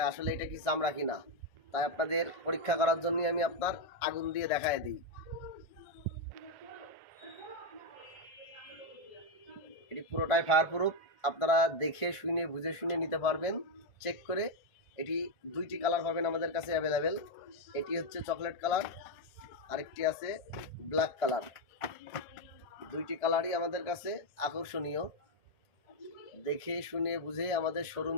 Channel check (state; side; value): late; right; 1.5 ms